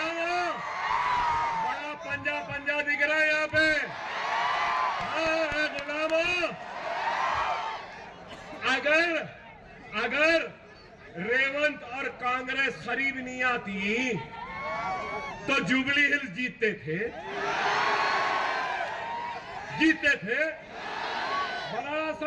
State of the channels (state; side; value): identical; both; correlation 1.00